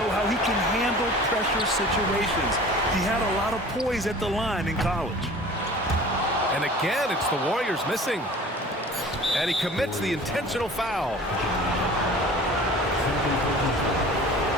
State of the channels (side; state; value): both; normal; correlation 0.43